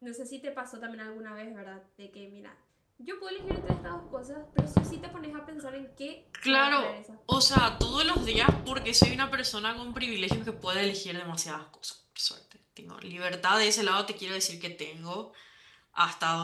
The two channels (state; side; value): identical; both; correlation 1.00